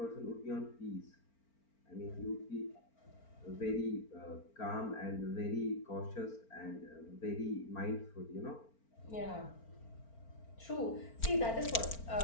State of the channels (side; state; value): right; late; 4.4 ms